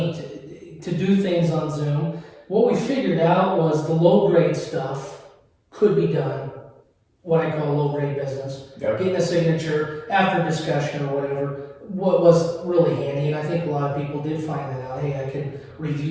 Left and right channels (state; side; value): identical; both; correlation 1.00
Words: to do things on Zoom. What we figured out was the low grade stuff could be done, what I call low grade business. Yep. Getting a signature after discussion or whatever, what was really handy, and I think a lot of people did find that out. Hey, I can